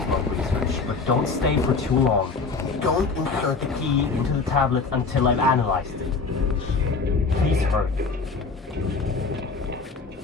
research, but don't stay for too long. Don't insert the key into the tablet until I've analyzed it. Please hurry.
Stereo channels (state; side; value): quieter; right; 4.4 dB